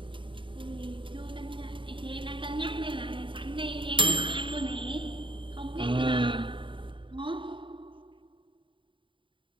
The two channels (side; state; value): left; late; 0.24 ms